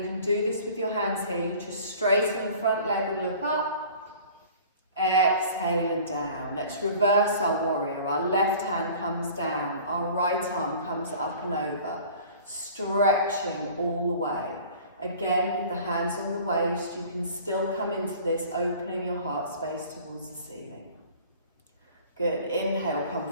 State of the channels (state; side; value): inverted; both; correlation -0.46